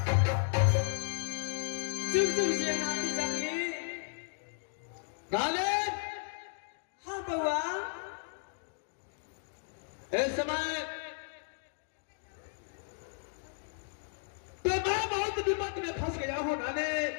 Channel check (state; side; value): silent; right; digital silence